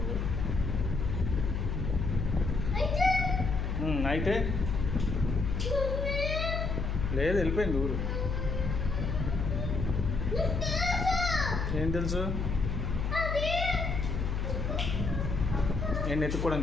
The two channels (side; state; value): left; noise; hum, 1 dB below the sound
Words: అయితే లేదు, వెళ్ళిపోయింది ఊరు. ఏం తెలుసు? నేను